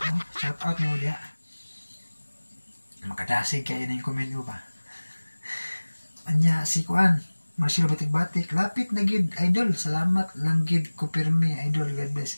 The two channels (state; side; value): inverted; both; correlation -1.00